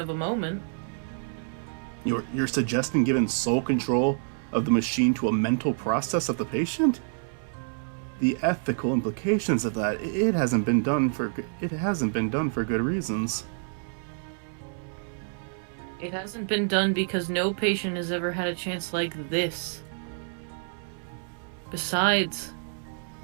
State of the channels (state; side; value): silent; left; 59 dB below the other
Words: a moment. You're suggesting giving sole control of the machine to a mental process of the patient? The ethical implications of that, it hasn't been done for good reasons. It hasn't been done because no patient has ever had a chance like this. Besides,